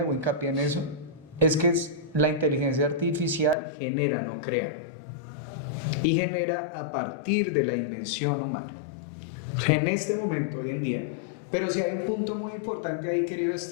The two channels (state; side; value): drops out; right; at 3.6 s